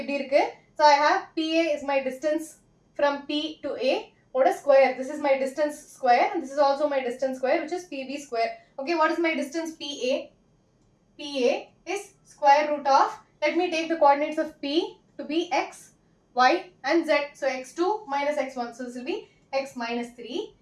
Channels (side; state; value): both; identical; correlation 1.00